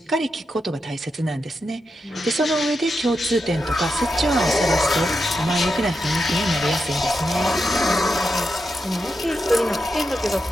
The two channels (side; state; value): both; normal; correlation 0.86